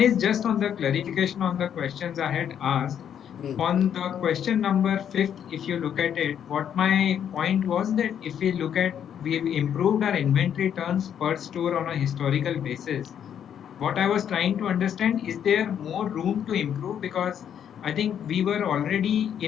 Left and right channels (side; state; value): right; quieter; 9.0 dB